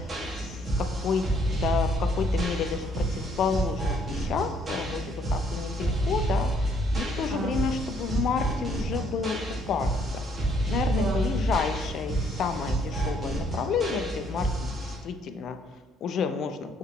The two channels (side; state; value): both; normal; correlation 0.66